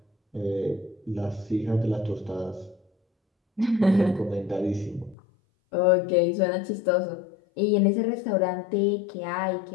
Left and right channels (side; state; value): right; drops out; at 5.2 s